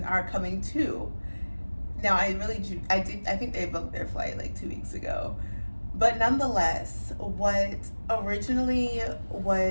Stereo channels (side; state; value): both; inverted; correlation -1.00